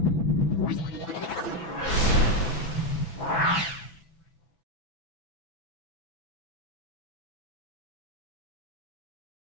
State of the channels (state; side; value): late; right; 6.0 ms